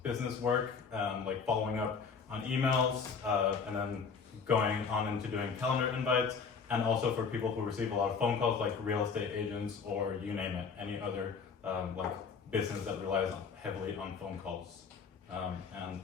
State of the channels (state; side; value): quieter; right; 5.6 dB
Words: business work, like following up on emails, and then going on into doing calendar invites, and also for people who receive a lot of phone calls, like real estate agents or you name it, any other like business that relies heavily on phone calls. And